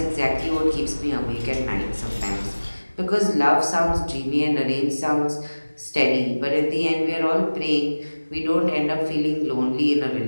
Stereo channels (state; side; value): inverted; both; correlation -1.00